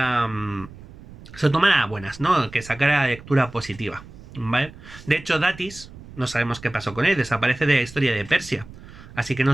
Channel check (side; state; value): right; noise; rumble, 18 dB below the sound